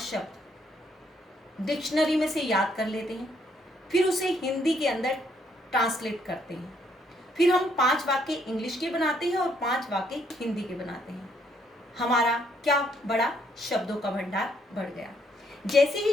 डिक्शनरी में से याद कर लेते हैं, फिर उसे हिंदी के अंदर ट्रांसलेट करते हैं, फिर हम 5 वाक्य इंग्लिश के बनाते हैं और 5 वाक्य हिंदी के बनाते हैं, हमारा क्या बढ़ा? शब्दों का भंडार बढ़ गया। जैसे ही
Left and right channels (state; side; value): normal; both; correlation 0.70